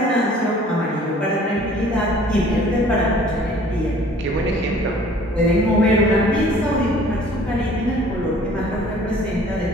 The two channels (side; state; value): both; normal; correlation 0.52